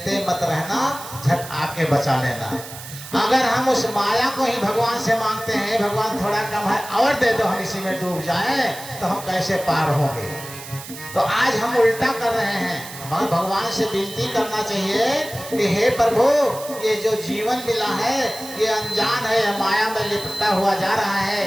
मत रहना, झट आके बचा लेना। अगर हम उस माया को ही भगवान से मांगते हैं, भगवान थोड़ा कम है और दे दो, हम इसी में डूब जाएं, तो हम कैसे पार होंगे। तो आज हम उल्टा कर रहे हैं। हमें भगवान से विनती करना चाहिए कि हे प्रभु, ये जो जीवन मिला है ये अनजान है, माया में लिपटा हुआ जा रहा है,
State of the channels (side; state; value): right; noise; hiss, 13 dB below the sound